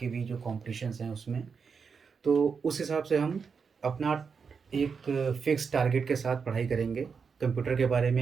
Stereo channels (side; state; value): left; quieter; 5.7 dB